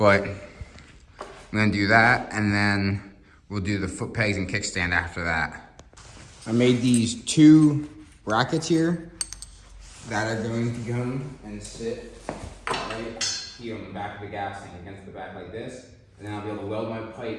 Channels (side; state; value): both; identical; correlation 1.00